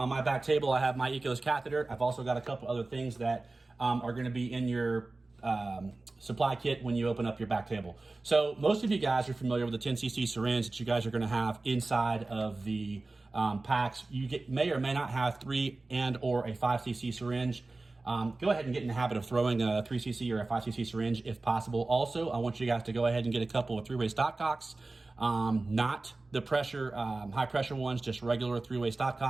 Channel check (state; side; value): quieter; left; 3.3 dB